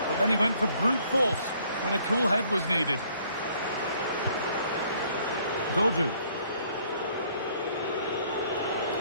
but then he went for brute force when a cool head was needed. Dodu.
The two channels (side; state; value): both; inverted; correlation -0.62